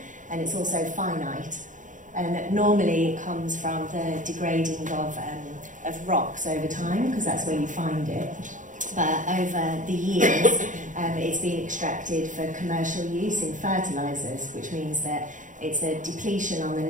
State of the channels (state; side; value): late; left; 0.37 ms